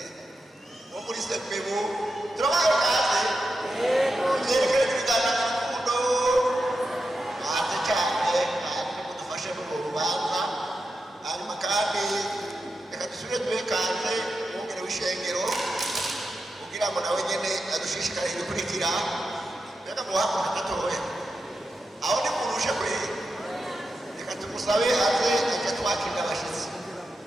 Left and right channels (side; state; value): both; normal; correlation 0.89